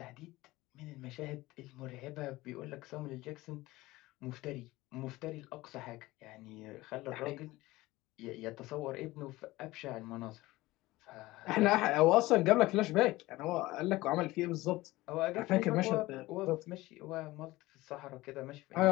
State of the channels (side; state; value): right; quieter; 19.0 dB